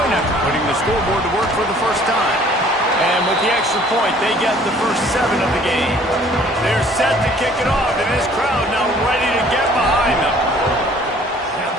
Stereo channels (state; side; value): normal; both; correlation 0.55